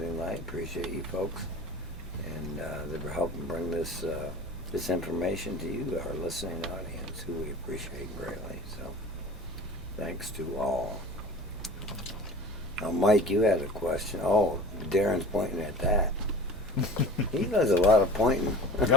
Light. Appreciate you folks. And they were helping bring this this information to you, our listening audience, who we appreciate greatly. So thanks to all. Now, Mike, you had a question. Oh, Darren's pointing at that. He does a lot of pointing.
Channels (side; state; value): both; normal; correlation 0.39